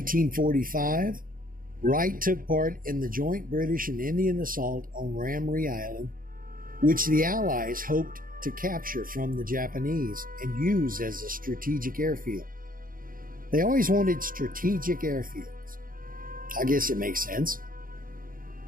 Wright took part in the joint British and Indian assault on Ramree Island, which the Allies hoped to capture from the Japanese and use as a strategic airfield. They always wanted strategic airfields. I guess it makes sense.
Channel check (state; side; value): late; left; 0.41 ms